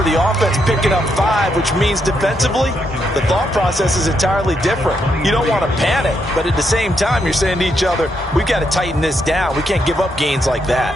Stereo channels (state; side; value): normal; both; correlation 0.79